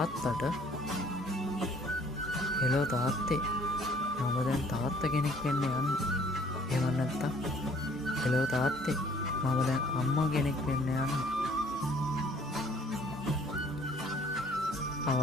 හෙලෝ තාත්තේ මම දැන් තාත්තා කෙනෙක් වෙන්න යන්නේ. එහෙම නැත්තම් හෙලෝ තාත්තේ මම දැන් අම්මා කෙනෙක් වෙන්න යන්නේ.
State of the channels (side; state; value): both; normal; correlation 0.58